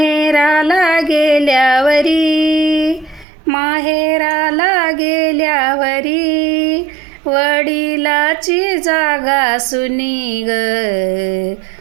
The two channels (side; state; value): left; drops out; at 3.2 s